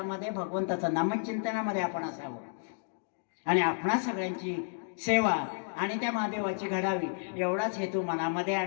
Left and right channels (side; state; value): right; silent; digital silence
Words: भगवंताचं नामचिंतनामध्ये आपण असावं आणि आपणा सगळ्यांची सेवा आणि त्या महादेवाची घडावी एवढाच हेतू मनामध्ये.